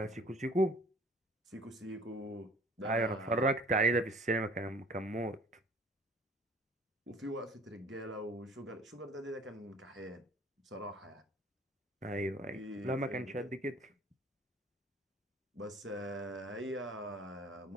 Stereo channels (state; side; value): normal; both; correlation 0.51